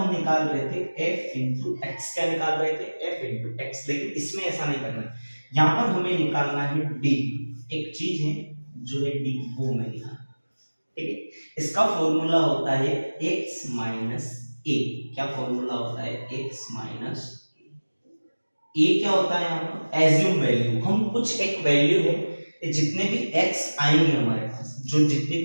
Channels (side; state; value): both; inverted; correlation -1.00